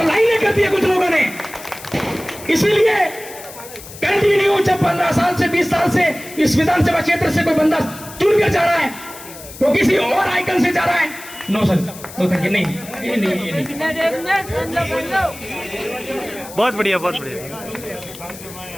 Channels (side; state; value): left; noise; hiss, 16 dB below the sound